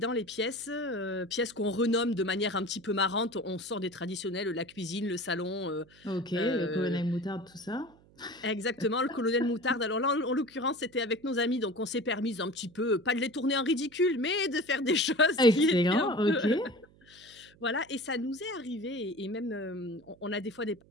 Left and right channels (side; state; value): right; noise; hum, 27 dB below the sound